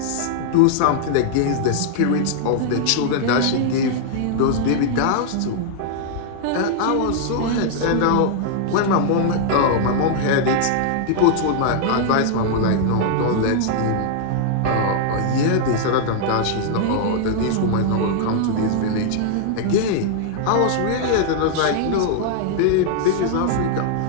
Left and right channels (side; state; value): both; different; correlation -0.01